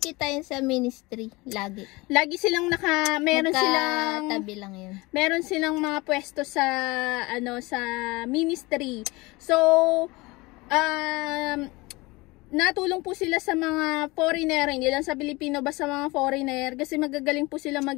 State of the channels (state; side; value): quieter; right; 23.3 dB